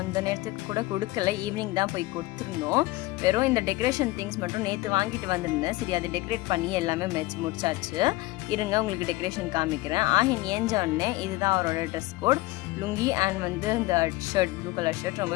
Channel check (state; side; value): quieter; right; 20.0 dB